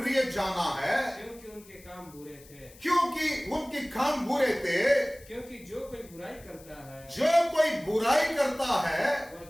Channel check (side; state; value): left; noise; hiss, 23 dB below the sound